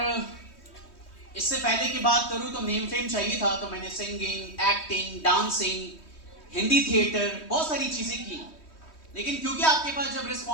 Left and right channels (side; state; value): right; late; 3.2 ms